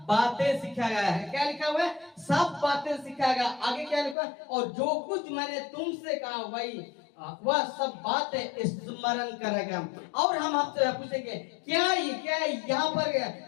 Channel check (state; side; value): drops out; right; at 4.2 s